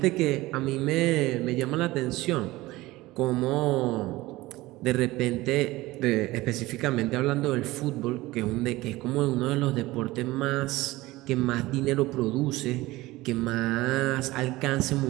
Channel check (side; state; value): left; quieter; 19.1 dB